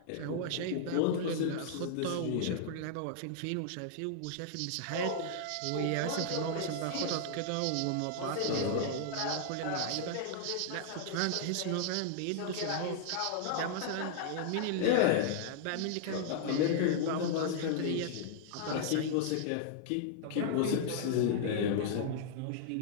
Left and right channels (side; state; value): both; different; correlation -0.01